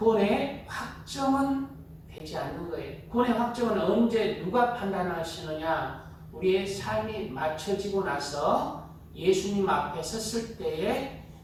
확정은 되지 않는 거예요. 구원의 확정은 언제 누가 판단하시느냐? 우리의 삶이 맞춰지고 나서 예수님 앞에 섰을 때에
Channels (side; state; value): both; identical; correlation 1.00